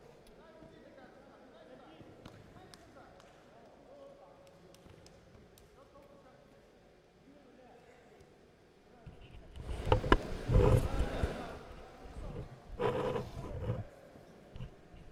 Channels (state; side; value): identical; both; correlation 1.00